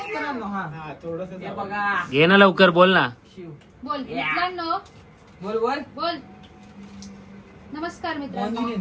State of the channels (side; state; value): both; identical; correlation 1.00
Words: घे ना लवकर. बोल ना. बोल मित्रांनो. बोल बोल. बोल नमस्कार मित्रांनो.